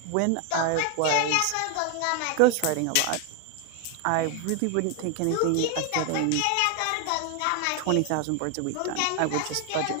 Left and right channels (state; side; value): different; both; correlation 0.00